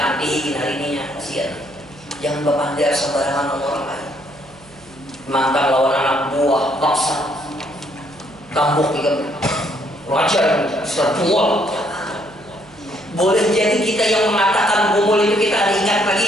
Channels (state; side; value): noise; right; hum, 25 dB below the sound